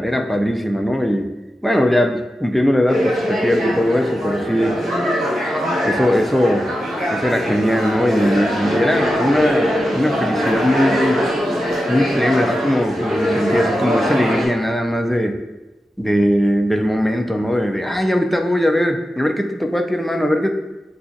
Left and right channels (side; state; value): both; normal; correlation 0.91